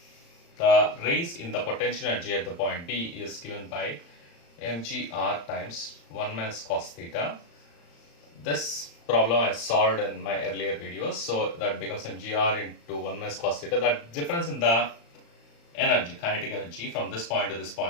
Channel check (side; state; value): right; late; 35 ms